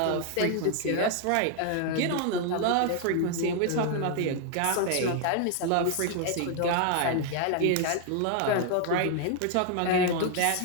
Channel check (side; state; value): both; different; correlation 0.00